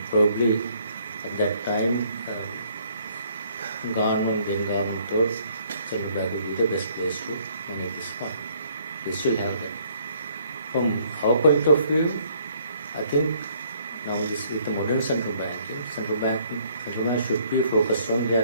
probably at that time, government thought Central Bank would be the best place to manage this fund. We still have them. From our point of view, I think now this with the modern central bank should be focused on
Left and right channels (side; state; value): both; inverted; correlation -0.64